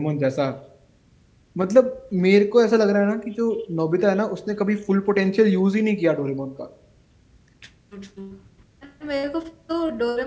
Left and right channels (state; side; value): identical; both; correlation 1.00